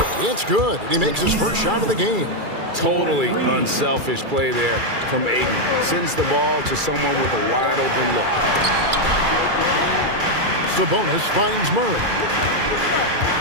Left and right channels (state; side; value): late; left; 2.3 ms